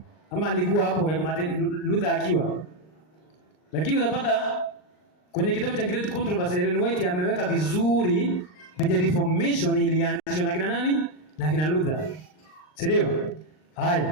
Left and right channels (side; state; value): right; late; 39 ms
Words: ama alikuwa hapo Martin Luther akiwa. Lakini utapata kwenye kitabu cha Great Controversy Ellen White ameweka vizuri the Reformation ilianzishwa na kina nani? Na kina Luther. Ndio?